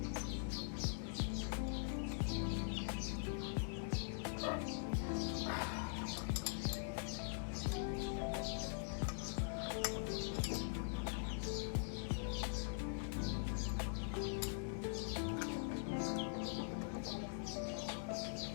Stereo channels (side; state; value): right; silent; digital silence